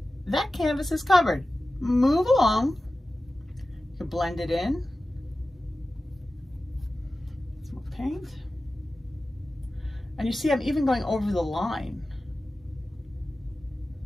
That canvas is covered. Move along. You can blend it in. Some more paint. And you see I'm even going over the line.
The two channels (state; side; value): normal; both; correlation 0.95